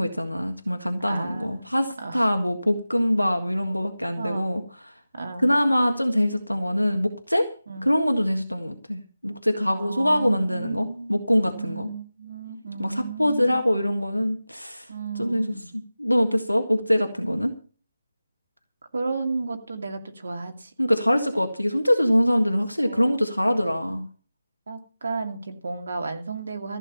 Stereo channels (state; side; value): inverted; both; correlation -0.96